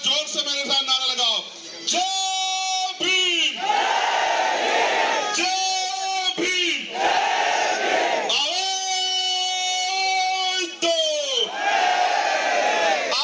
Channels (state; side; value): identical; both; correlation 1.00